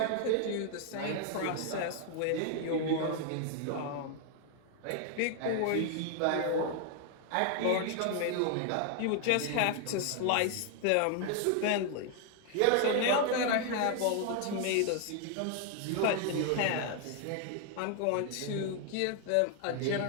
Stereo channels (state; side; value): different; both; correlation 0.00